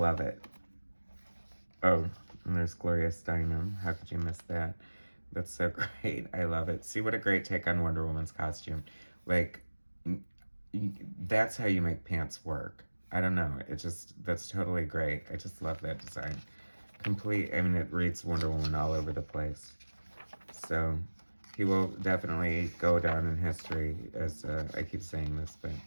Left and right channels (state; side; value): inverted; both; correlation -1.00